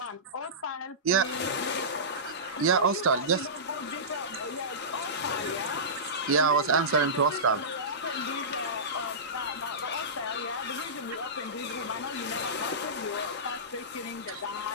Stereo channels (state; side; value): normal; both; correlation -0.20